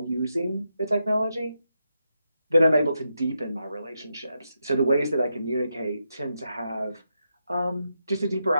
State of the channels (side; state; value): both; inverted; correlation -0.85